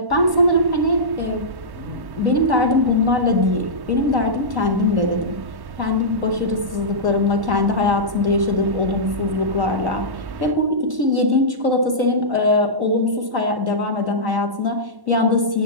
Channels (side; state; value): left; late; 1.1 ms